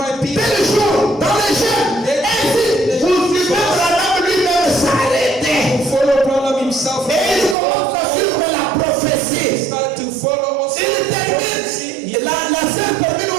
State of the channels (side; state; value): left; drops out; at 7.6 s